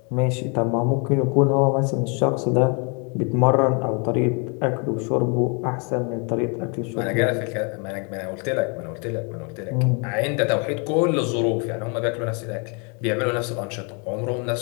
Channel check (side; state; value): right; quieter; 35.1 dB